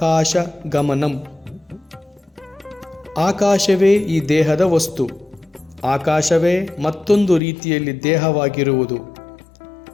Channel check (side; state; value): right; drops out; at 7.4 s